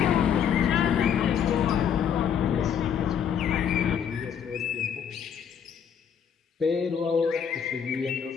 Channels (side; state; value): right; quieter; 8.0 dB